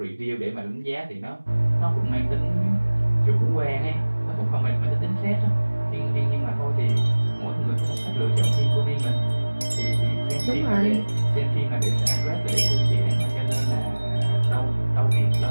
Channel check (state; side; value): inverted; both; correlation -1.00